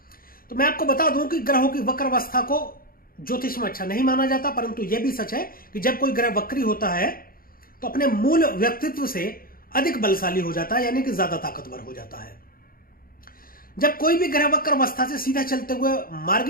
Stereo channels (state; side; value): late; right; 0.42 ms